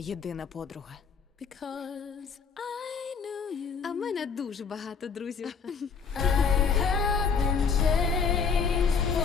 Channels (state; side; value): quieter; right; 5.8 dB